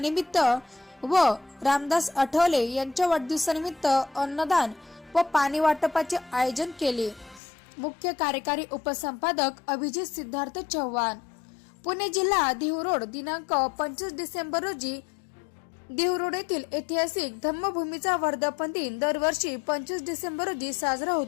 व रामदास आठवले यांच्या वाढदिवसानिमित्त अन्नदान व पाणी वाटपाचे आयोजन केले। मुख्य कार्यकारी उपसंपादक अभिजित सिद्धार्थ चव्हाण। पुणे जिल्हा देहूरोड दिनांक 25 डिसेंबर रोजी देहूरोड येथील ऐतिहासिक धम्मभूमीचा वर्धापन दिन दरवर्षी 25 डिसेंबर रोजी साजरा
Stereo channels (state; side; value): drops out; right; at 7.4 s